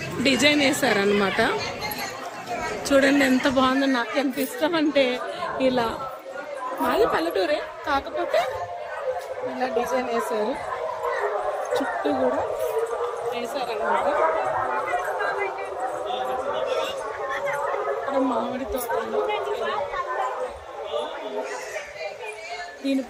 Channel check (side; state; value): both; identical; correlation 1.00